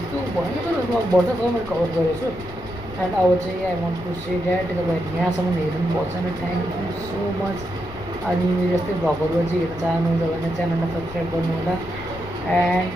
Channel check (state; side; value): noise; left; rumble, 15 dB below the sound